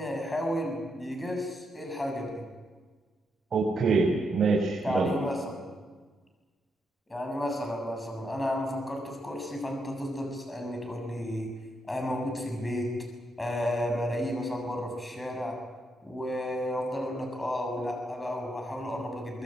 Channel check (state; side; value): normal; both; correlation 0.80